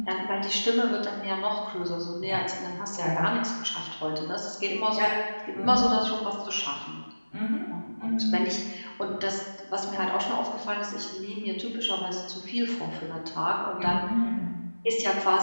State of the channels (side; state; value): both; inverted; correlation -1.00